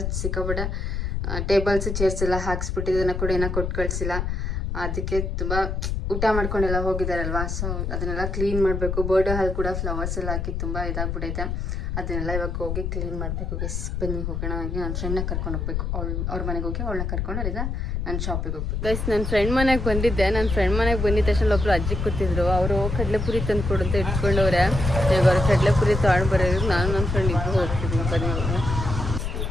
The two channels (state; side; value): noise; left; rumble, 2 dB below the sound